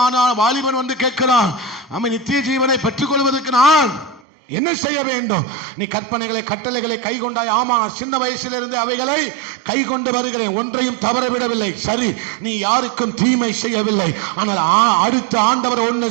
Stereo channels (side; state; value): left; drops out; at 4.2 s